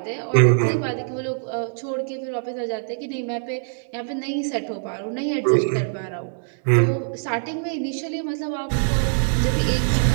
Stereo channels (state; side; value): silent; left; digital silence